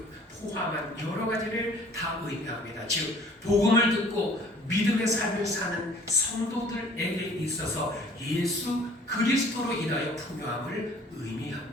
포함한 여러 가지를 다 의미합니다. 즉 복음을 듣고 믿음의 삶을 사는 성도들에게 있어서 예수 그리스도로 인하여 풍요함을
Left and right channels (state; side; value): normal; both; correlation 0.53